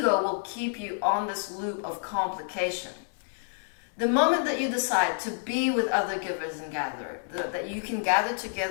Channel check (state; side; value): silent; right; digital silence